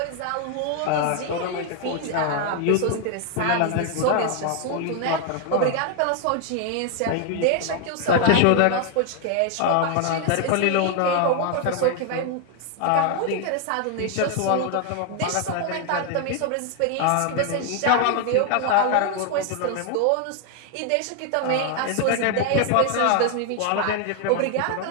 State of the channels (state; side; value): different; both; correlation 0.00